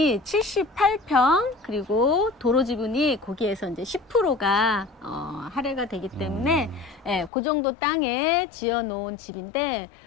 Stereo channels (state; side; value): drops out; right; at 7.3 s